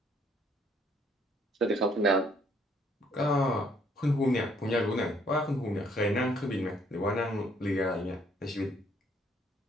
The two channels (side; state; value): both; normal; correlation 0.65